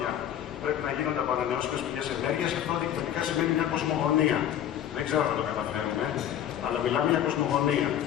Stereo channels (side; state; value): right; quieter; 10.6 dB